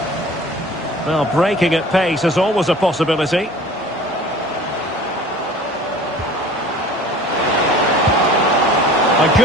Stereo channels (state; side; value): normal; both; correlation 0.45